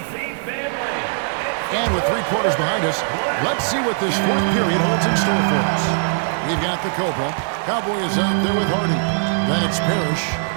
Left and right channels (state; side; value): silent; left; digital silence